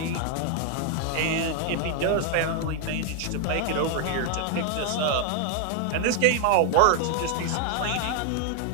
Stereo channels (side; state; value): both; different; correlation 0.00